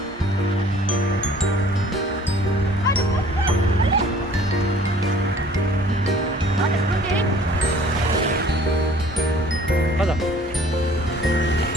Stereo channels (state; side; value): normal; both; correlation 0.53